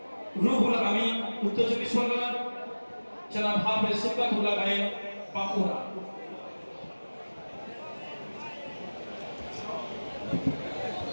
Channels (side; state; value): both; inverted; correlation -1.00